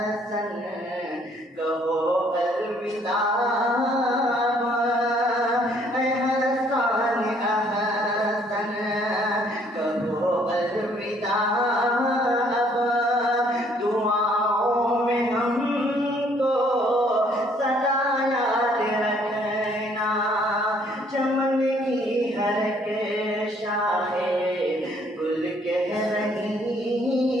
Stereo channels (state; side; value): normal; both; correlation 0.63